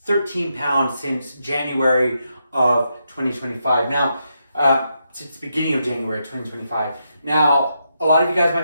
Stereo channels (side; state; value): both; inverted; correlation -0.82